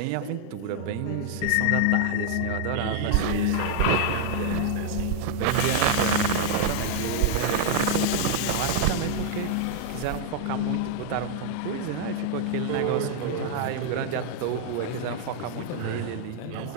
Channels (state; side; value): different; both; correlation 0.00